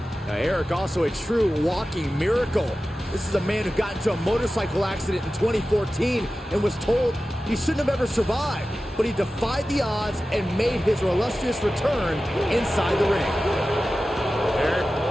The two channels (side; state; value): both; normal; correlation 0.94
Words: Now, Eric also a true walking miracle. This is a man who got into a motorcycle accident in 2014 and was told he shouldn't have ever survived, but he defied the odds and made his illustrious return inside the ring. Eric,